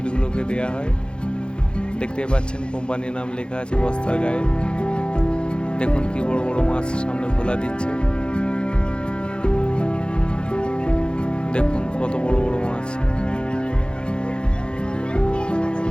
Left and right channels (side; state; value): right; late; 0.053 ms